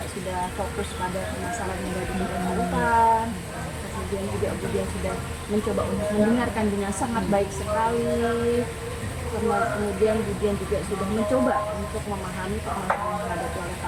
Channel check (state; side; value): identical; both; correlation 1.00